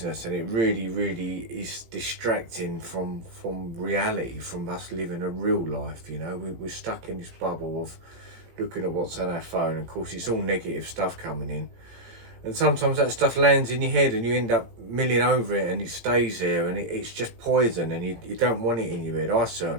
and it really, really is distracting from reality, from us living a real life. You know, we're stuck in this bubble of looking at what's on our phone. Of course, it's all negative stuff coming in, and sometimes that stuff lands in your head and you end up milling over it, and it stays there, and it's just poison, and you don't want it in your head. I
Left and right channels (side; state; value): left; late; 17 ms